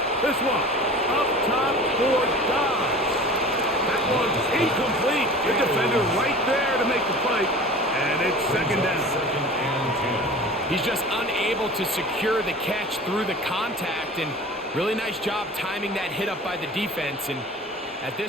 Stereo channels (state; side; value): normal; both; correlation 0.39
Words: This one up top for Dobbs. That one's incomplete. The defender right there to make the fight. And it's second down. He's just unable to secure the catch through the contact, and really nice job timing that hit up by the defense. And at